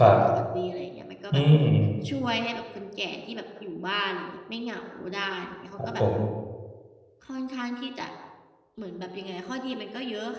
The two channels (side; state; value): both; identical; correlation 1.00